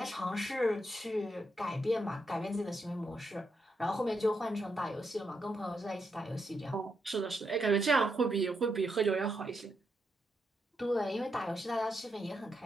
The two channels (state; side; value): normal; both; correlation 0.82